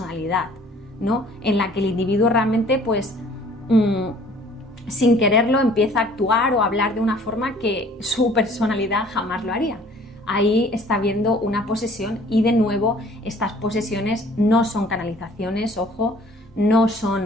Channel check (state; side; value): normal; both; correlation 0.54